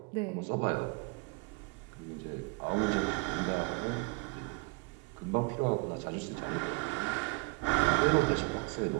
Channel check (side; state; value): left; quieter; 27.9 dB